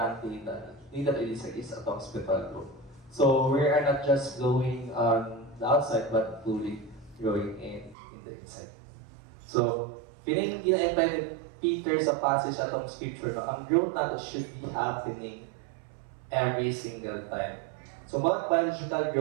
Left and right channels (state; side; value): drops out; left; at 8.0 s